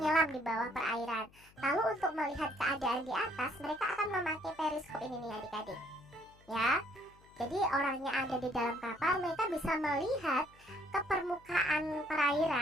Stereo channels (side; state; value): left; noise; hum, 27 dB below the sound